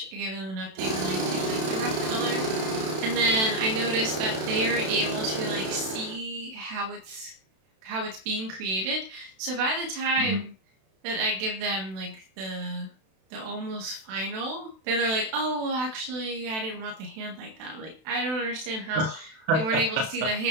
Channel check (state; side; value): late; left; 32 ms